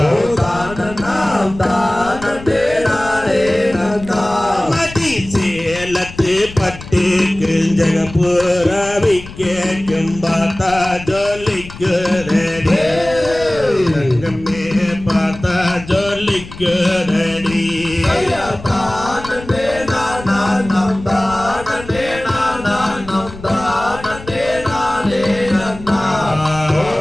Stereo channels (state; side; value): noise; left; rumble, 15 dB below the sound